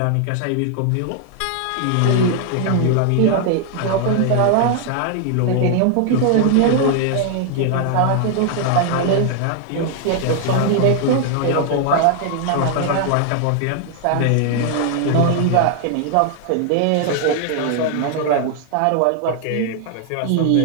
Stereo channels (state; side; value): different; both; correlation 0.00